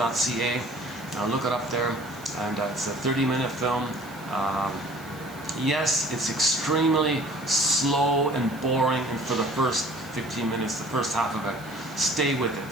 Look it up there, and it's a 30-minute film. Yes, it's extremely slow and boring, and for the first 15 minutes, the first half of it, stay with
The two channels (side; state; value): right; noise; hiss, 22 dB below the sound